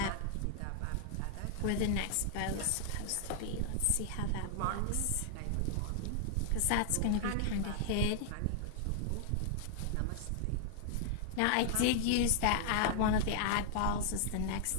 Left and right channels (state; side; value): different; both; correlation -0.01